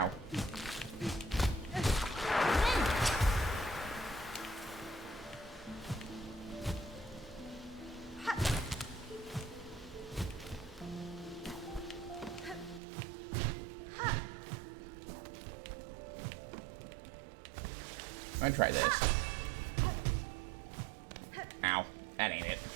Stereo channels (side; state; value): left; drops out; at 12.8 s